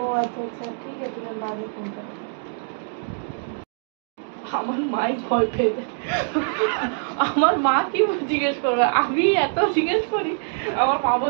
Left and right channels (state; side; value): silent; left; 60 dB below the other